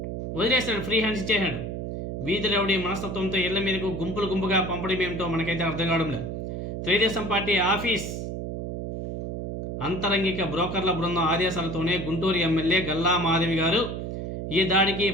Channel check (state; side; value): noise; right; hum, 5 dB below the sound